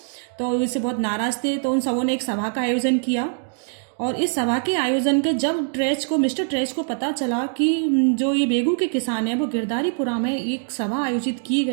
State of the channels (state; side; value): silent; left; digital silence